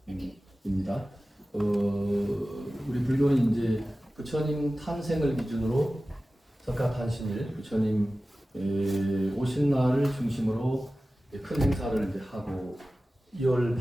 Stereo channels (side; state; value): both; normal; correlation 0.96